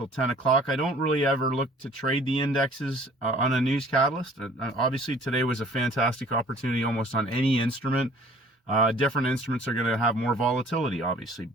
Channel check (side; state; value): both; normal; correlation 0.52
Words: 10 o'clock. I don't really ever look to trade the indexes on a news catalyst. Obviously, today was a fantastic opportunity almost on any instrument. Different instruments are going to have more volatility, obviously,